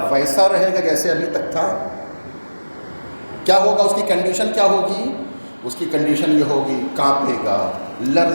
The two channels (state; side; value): inverted; both; correlation -1.00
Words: ویسا رہے گا جیسے ابھی تک تھا؟ کیا ہوگا اس کی کنڈیشن؟ کیا ہوگی اس کی کنڈیشن؟ یہ ہوگی کانپے گا،